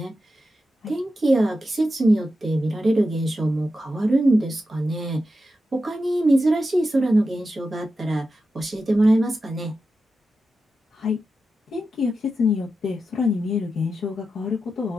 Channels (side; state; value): both; normal; correlation 0.90